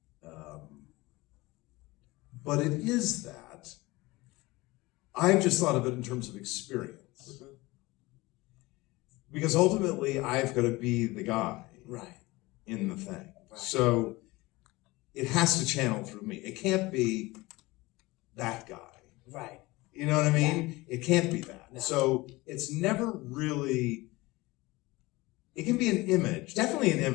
But it is that. I've just thought of it in terms of experience. Mm-hmm. Because ultimately, I've got to be the guy Right. in the thing. Right. So it has to channel through me. It can't be that guy. Right. You know what I mean? It can't be that. No. So it's never really, it can be an image, definitely an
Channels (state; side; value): quieter; right; 21.3 dB